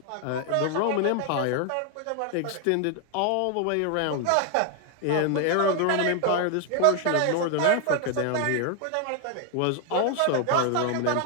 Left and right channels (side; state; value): both; different; correlation 0.00